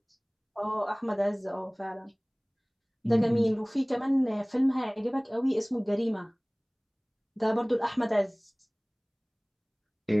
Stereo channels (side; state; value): both; identical; correlation 1.00